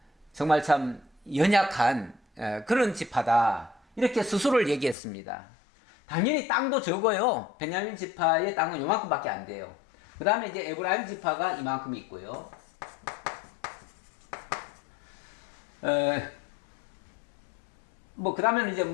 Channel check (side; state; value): right; drops out; at 5.0 s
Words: 정말 참 연약한 그런 지파다 이렇게 스스로를 얘기했습니다. 당연히 땅도 적어요. 베냐민 지파의 땅은 요만큼밖에 안 돼요. 그 다음에 이제 에브라임 지파가 이만큼 있고요. 그 다음에는 이제